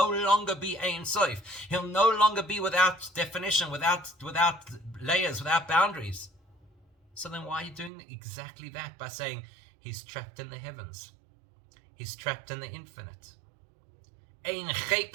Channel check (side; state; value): left; drops out; at 7.9 s